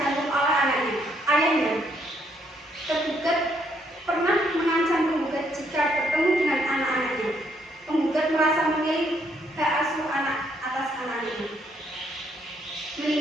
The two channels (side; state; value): both; normal; correlation 0.71